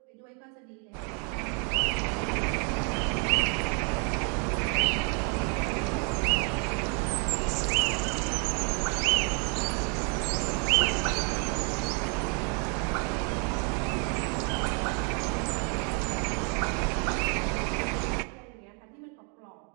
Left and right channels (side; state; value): left; quieter; 37.6 dB